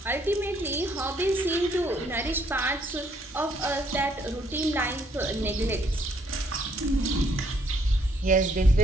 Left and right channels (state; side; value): normal; both; correlation 0.68